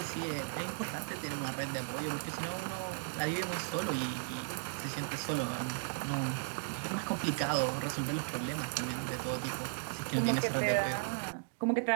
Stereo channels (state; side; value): silent; left; digital silence